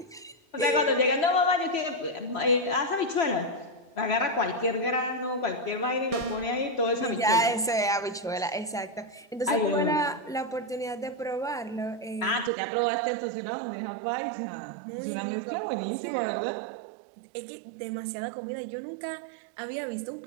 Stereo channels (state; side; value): drops out; left; at 12.5 s